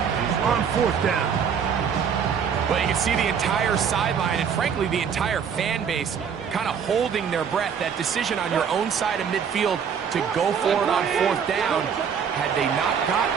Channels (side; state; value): left; quieter; 7.2 dB